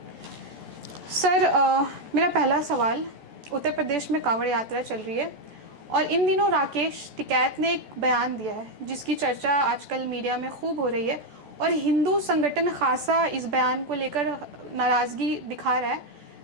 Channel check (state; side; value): late; left; 14 ms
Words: सर, मेरा पहला सवाल, उत्तर प्रदेश में कांवड़ यात्रा चल रही है और इन दिनों राकेश टिकैत ने एक बयान दिया है जिसकी चर्चा आजकल मीडिया में खूब हो रही है और हिंदू संगठन खासा इस बयान को लेकर नाराज़गी दिखा रहा है।